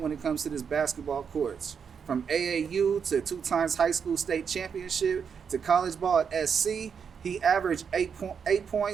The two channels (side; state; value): left; quieter; 6.7 dB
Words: when it comes to this basketball courts. From AAU to 2 times high school state championship to college ball at SC, he averaged 8